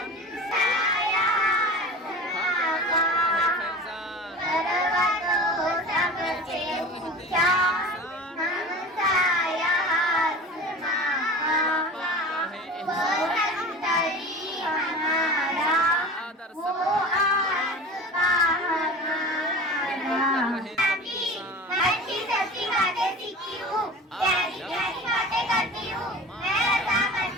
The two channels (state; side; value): normal; both; correlation 0.35